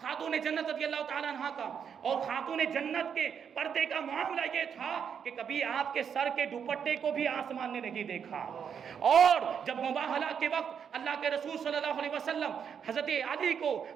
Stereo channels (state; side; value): quieter; left; 7.5 dB